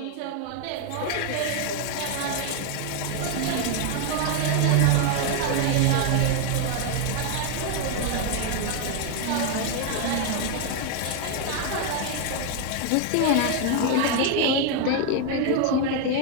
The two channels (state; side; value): different; both; correlation 0.01